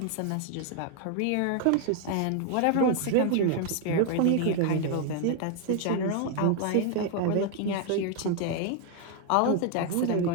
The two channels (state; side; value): different; both; correlation 0.00